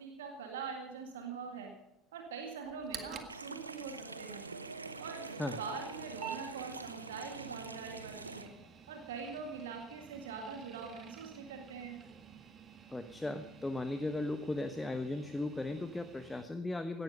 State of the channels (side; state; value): both; normal; correlation 0.44